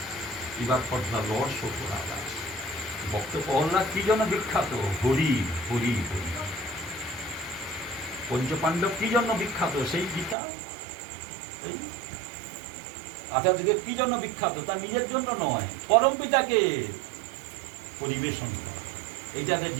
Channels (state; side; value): drops out; left; at 10.4 s